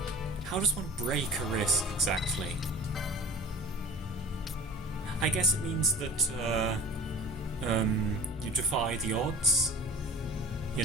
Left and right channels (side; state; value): both; normal; correlation 0.42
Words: How does one break a risk exactly? I guess it means that you defy the odds. You